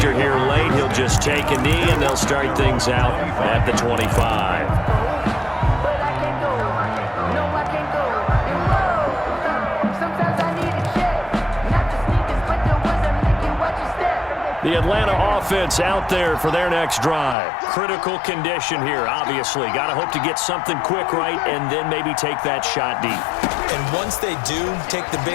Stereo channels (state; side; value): drops out; right; at 17.4 s